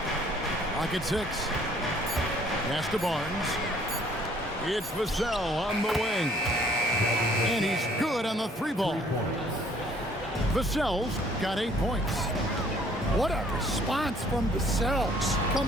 Lock at 6. Pass to Barnes. It's Vassell on the wing. And he's good on the 3-ball. Vassell's got 8 points. What a response from Vassell,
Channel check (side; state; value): both; normal; correlation 0.59